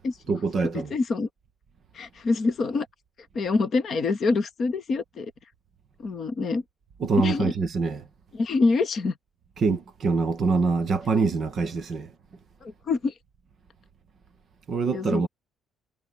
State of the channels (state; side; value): normal; both; correlation 0.79